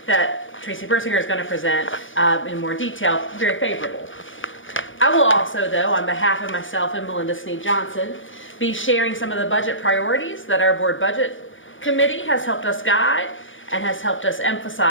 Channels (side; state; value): right; late; 0.57 ms